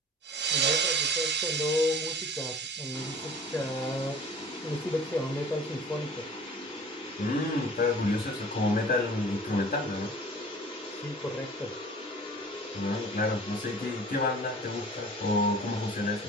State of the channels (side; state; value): both; normal; correlation 0.45